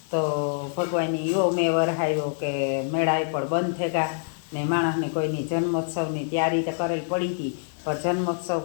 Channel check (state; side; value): silent; right; digital silence